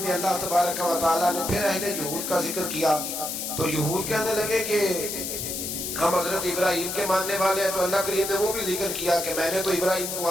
میں اللہ تبارک و تعالیٰ نے پھر اہل یہود کا ذکر کیا. تو یہود کہنے لگے کہ ہم حضرت ابراہیم کے ماننے والے ہیں. تو اللہ کریم نے وہ بھی ذکر کیا کہ میں نے تو ابراہیم کو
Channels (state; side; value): noise; left; hiss, 4 dB below the sound